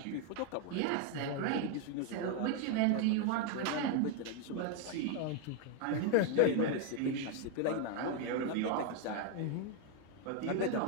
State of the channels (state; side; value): different; both; correlation 0.01